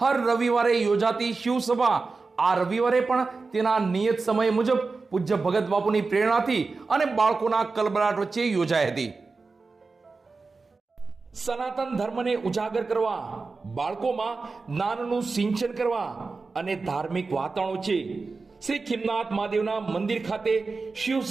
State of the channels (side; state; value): left; quieter; 4.1 dB